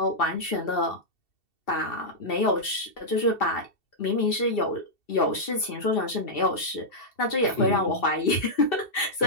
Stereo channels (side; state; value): right; late; 2.7 ms